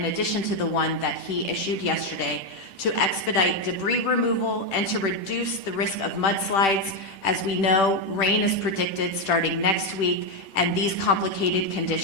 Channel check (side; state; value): right; late; 10 ms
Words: addition to the one that he issued yesterday to expedite debris removal and to reduce the risk of mudslides. As we know, rain is predicted starting next week, and these complicated